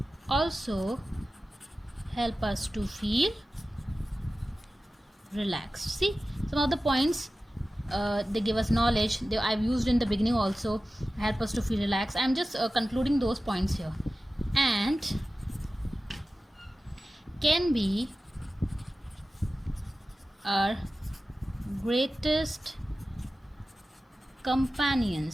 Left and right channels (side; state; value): both; normal; correlation 0.95